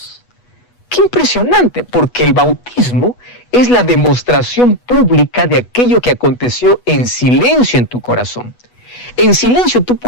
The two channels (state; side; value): late; right; 8.2 ms